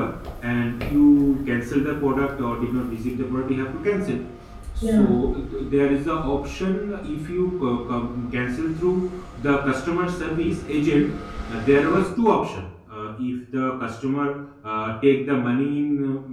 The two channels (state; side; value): identical; both; correlation 1.00